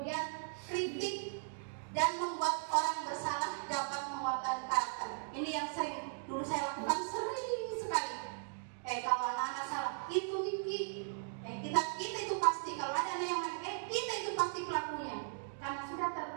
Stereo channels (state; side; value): silent; left; digital silence